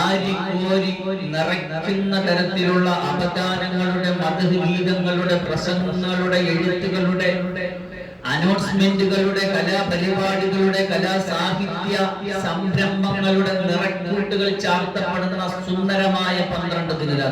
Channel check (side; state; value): both; identical; correlation 1.00